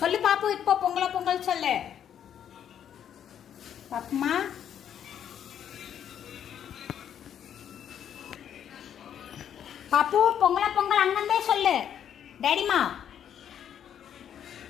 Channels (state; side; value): quieter; right; 9.4 dB